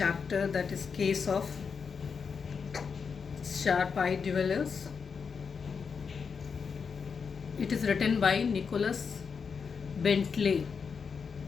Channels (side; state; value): right; quieter; 5.8 dB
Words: that is Case of Sharp Eye Dwellers. It is written by Nicholas Bentley.